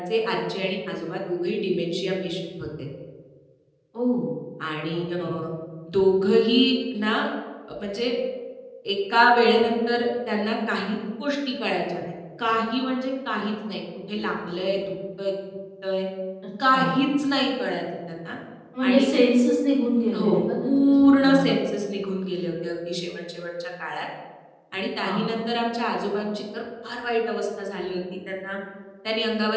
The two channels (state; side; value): identical; both; correlation 1.00